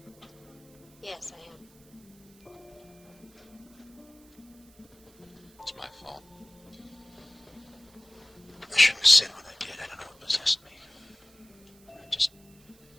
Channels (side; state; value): right; noise; hiss, 27 dB below the sound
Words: Yes, I am. It's my fault. I shouldn't have said what I did. I don't know what possessed me. I just